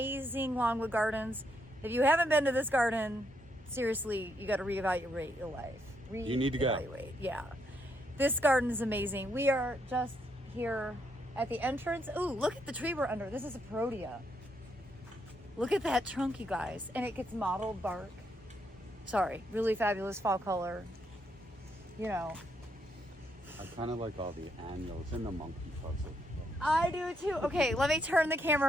Longwood Gardens. If you haven't been to this garden, seriously, you got to reevaluate your life. You need to go. Yeah. This garden is amazing. We are just here at the entrance. Ooh, look at the tree we're under. This is a perodia. Look at that trunk, you guys. And it gets mottled bark. Sorry, really fabulous fall color. You know. I kind of like all the annuals and the monkey puzzle. I do too. Okay, let me turn the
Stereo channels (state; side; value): normal; both; correlation 0.76